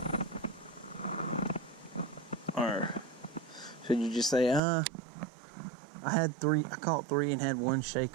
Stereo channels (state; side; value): drops out; left; at 4.6 s